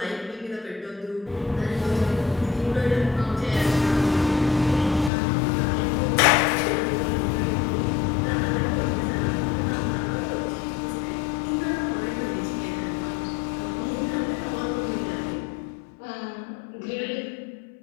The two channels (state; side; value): drops out; right; at 5.1 s